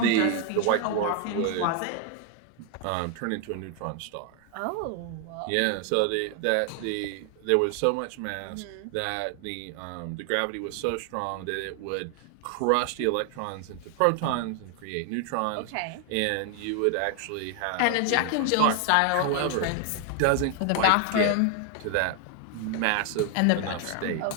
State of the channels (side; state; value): both; different; correlation 0.00